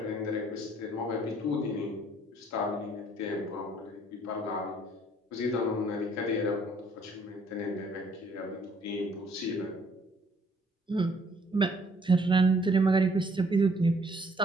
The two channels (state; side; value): normal; both; correlation 0.63